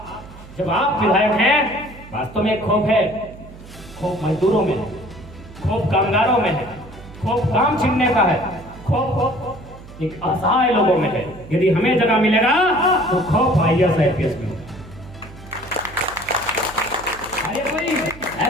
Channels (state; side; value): noise; right; hum, 18 dB below the sound